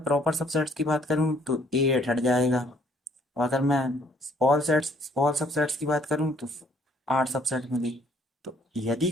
प्रॉपर सबसेट्स की बात करूं तो ए एट हट जाएगा, और अगर मैं ऑल सबसेट्स की बात करूं तो 8 सबसेट मिली। तो यदि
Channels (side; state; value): both; normal; correlation 0.62